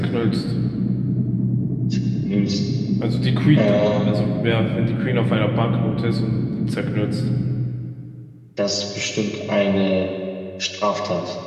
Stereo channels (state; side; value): identical; both; correlation 1.00